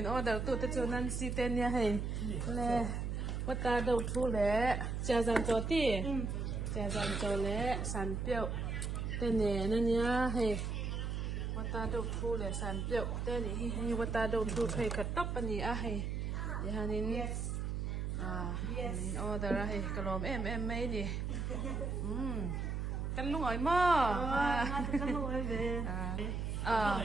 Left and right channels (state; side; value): noise; right; hum, 2 dB below the sound